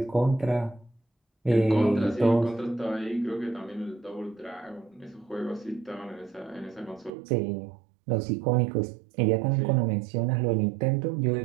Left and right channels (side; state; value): left; drops out; at 7.1 s